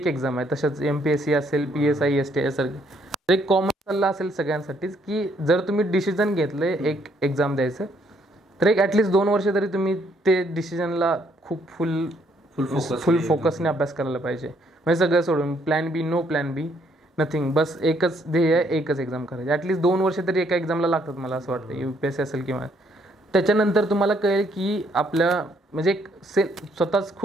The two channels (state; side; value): normal; both; correlation 0.69